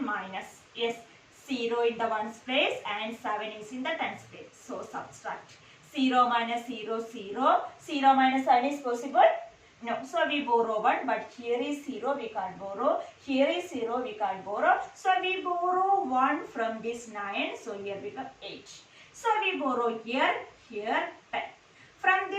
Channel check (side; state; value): both; identical; correlation 1.00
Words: minus, yes, 0 in the ones place and 7 is in the tens place. So subtract. 0 minus 0, 0. 0 minus 7 is possible? No. So we borrow 1, but here is 0, we can't borrow. Here is 0, we can't borrow. So we borrow 1 from this 9. So here become 8. So we borrow here, 10. From